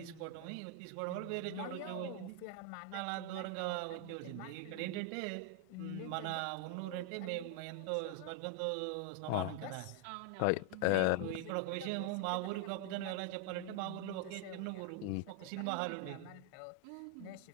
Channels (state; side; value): different; both; correlation 0.00